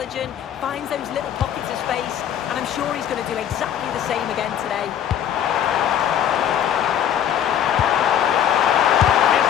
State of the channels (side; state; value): right; quieter; 9.8 dB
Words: finds those little pockets of space, and I'm sure he's going to do exactly the same again today. Is